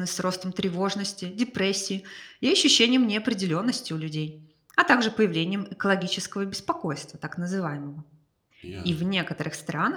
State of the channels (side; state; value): both; identical; correlation 1.00